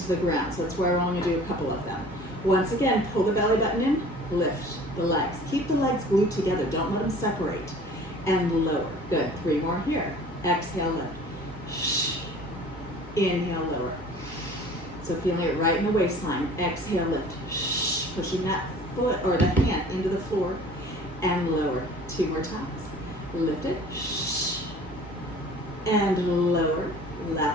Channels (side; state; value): both; normal; correlation 0.47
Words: the ground, so that's why we're only going to do a couple of them. Once again, pull the belly button in, lift the legs. Keep the legs glued together. Don't let them separate. And lower. Good. 3 more here. Exhale, lift. Shh. Inhale, lower. So feeling it right in the waistline. Exhale, lift. Shh. Pushing that foot or the hand into the floor and lower. 2 more times. Lift it. Shh. and lower.